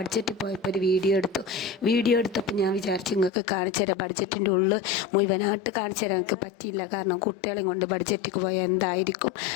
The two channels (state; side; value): drops out; right; at 3.3 s